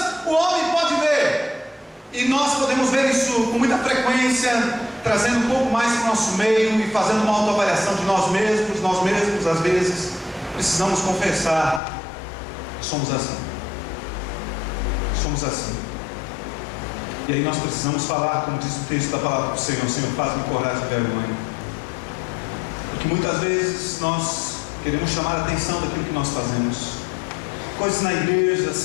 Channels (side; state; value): right; drops out; at 11.8 s